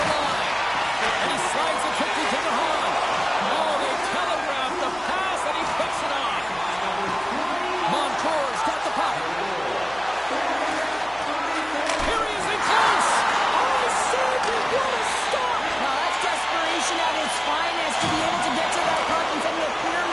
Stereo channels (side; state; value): left; noise; hum, 23 dB below the sound